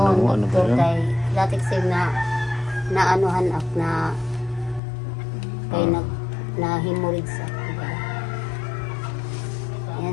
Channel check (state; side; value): drops out; right; at 4.8 s